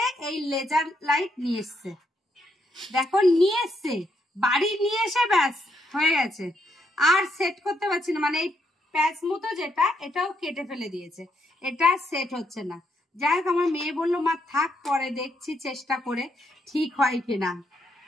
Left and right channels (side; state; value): both; normal; correlation 0.77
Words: এই লেজার লাইট নিয়ে এসছে, দেখো নিয়ে এসছে, বাড়ি নিয়ে এসে ব্যাস হয়ে গেছে। আর সেট করতে পারছি না, মানে এই প্যাচ মতো যেটা, এটাও কেটে ফেলে দিয়েছে, এটা সেট হচ্ছে না। যাই হোক, আমার মেয়ে বললো মা থাক, পরে দেখছি চেষ্টা করে ঠিক হয় কিনা।